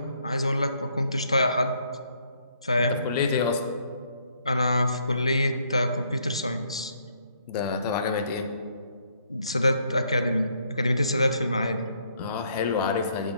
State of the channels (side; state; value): both; inverted; correlation -0.69